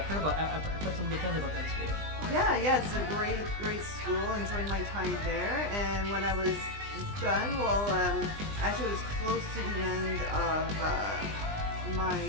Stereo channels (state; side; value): late; left; 20 ms